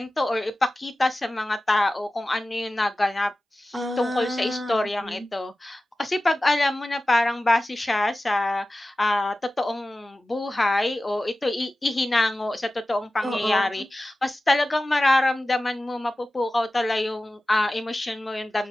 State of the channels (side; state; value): both; normal; correlation 0.96